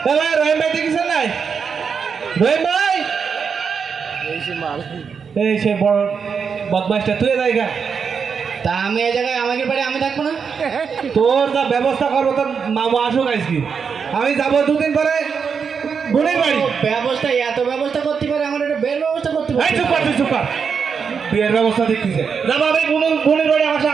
ভাই রহিম ভাই দেখেছেন নাই? রহিম ভাই এই সে বড় বদমাইশটা তুই জায়গা। তা আমি এই জায়গায় আমাকে বাড়ি আমি থাকবো না? তোর যা ব্যবস্থা করবো তোর মামা আসুক আজকে, আমি যাবো দুদিন পরে বোনের বাড়ি। ব্যবস্থা এত ব্যবস্থা করতে পারে, আমার একটা বের ব্যবস্থা করতে পারে। চুপ কর, তুই চুপ কর, বিয়ের ব্যবস্থা দেখতেছে। যাবো আমি বোনের বাড়ি, আমার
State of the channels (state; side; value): quieter; left; 6.2 dB